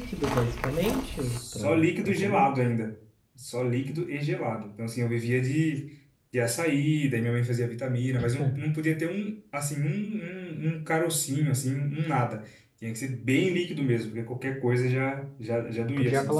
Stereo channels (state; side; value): identical; both; correlation 1.00